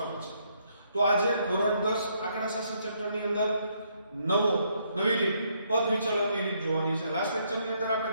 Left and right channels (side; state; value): both; inverted; correlation -0.72